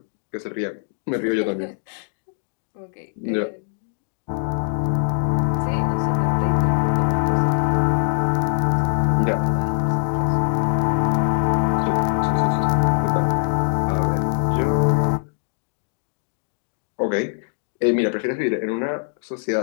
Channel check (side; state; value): right; silent; digital silence